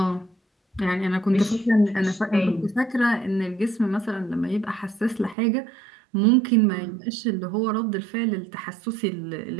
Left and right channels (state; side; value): drops out; left; at 5.4 s